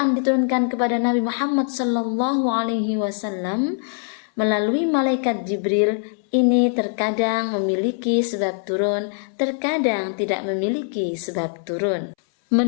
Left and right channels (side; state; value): right; silent; 64 dB below the other